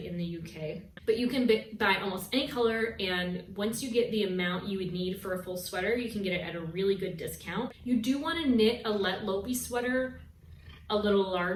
in the UK. But you can buy almost any color, and once you get the amount you would need for a full sweater, you can get it at a really good discount. You do want to knit a Let Lopey sweater a little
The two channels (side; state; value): both; identical; correlation 1.00